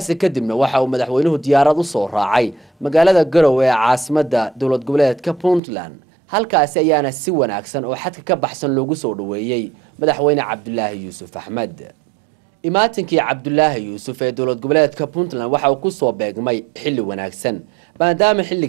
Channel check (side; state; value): left; drops out; at 5.6 s